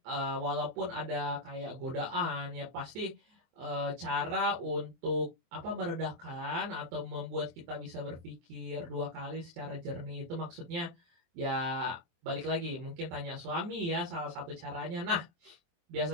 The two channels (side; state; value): left; late; 23 ms